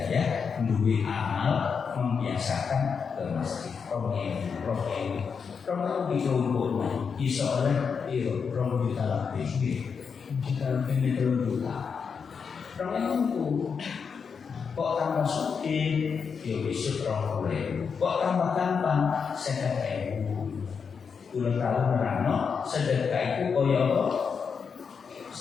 duit amal membiasakan ke masjid orang ibu dikumpul iso oleh iyo orang juta lebih kita lebih juta orang itu kok tambah suki yo besok orang boleh kok tambah gampang sedekah udah tahu merano sedekah itu koyo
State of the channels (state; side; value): quieter; right; 6.0 dB